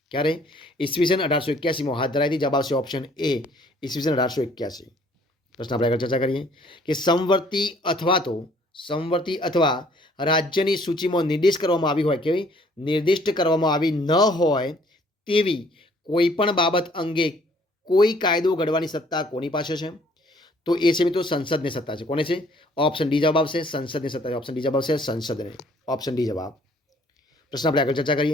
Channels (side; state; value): both; normal; correlation 0.59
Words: ક્યારે? ઈસવીસન 1881માં હાથ ધરાઈ હતી. જવાબ આવશે ઓપ્શન એ ઈસવીસન 1881. પ્રશ્ન આપણે આગળ ચર્ચા કરીએ કે સમવર્તી અથવા રાજ્યની સૂચિમાં નિર્દિષ્ટ કરવામાં આવી ન હોય તેવી કોઈ પણ બાબત અંગે કોઈ કાયદો ઘડવાની સત્તા કોની પાસે છે? તો એ છે મિત્રો સંસદની સત્તા છે. કોને છે? ઓપ્શન ડી જવાબ આવશે સંસદની સત્તા છે. ઓપ્શન ડી જવાબ આવશે સંસદને. ઓપ્શન ડી જવાબ. પ્રશ્ન આપણે આગળ ચર્ચા